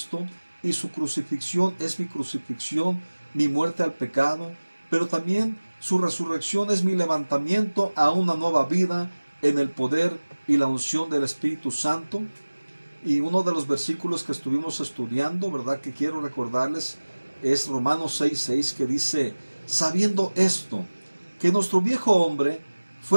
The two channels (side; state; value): both; inverted; correlation -1.00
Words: y su crucifixión es mi crucifixión, mi muerte al pecado, pero también su resurrección es mi levantamiento a una nueva vida en el poder y la unción del Espíritu Santo. Y uno de los versículos que estuvimos estudiando, ¿verdad?, que quiero recordarles, es Romanos 6:6, que dice: sabiendo esto, que nuestro viejo hombre